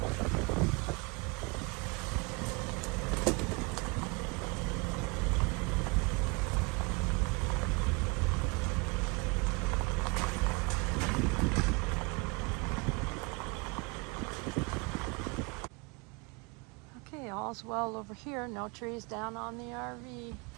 Okay, all's well over here. No trees down on the RV.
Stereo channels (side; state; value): left; quieter; 29.0 dB